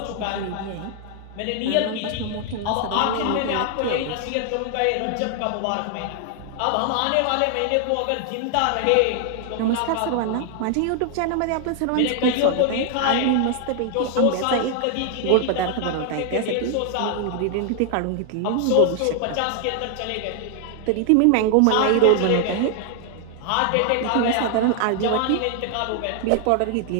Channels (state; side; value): different; both; correlation 0.00